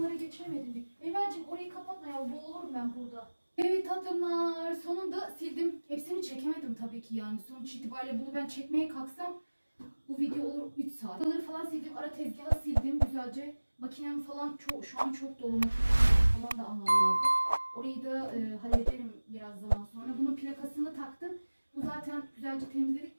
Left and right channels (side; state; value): both; inverted; correlation -1.00